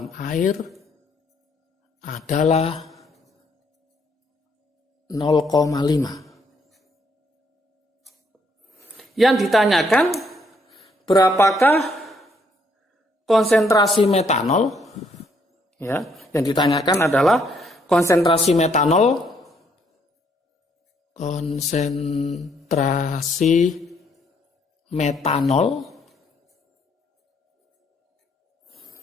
air adalah 0,5. Yang ditanyakan berapakah konsentrasi metanol? Ya, yang ditanyakan adalah konsentrasi metanol. Konsentrasi metanol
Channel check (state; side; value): normal; both; correlation 0.70